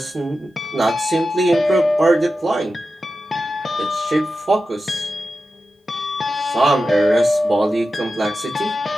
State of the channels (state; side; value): normal; both; correlation 0.92